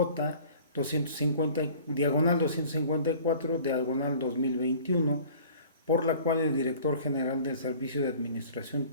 250, diagonal 254, diagonal 2021, por la cual el director general del Servicio de Administración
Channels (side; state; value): both; inverted; correlation -0.47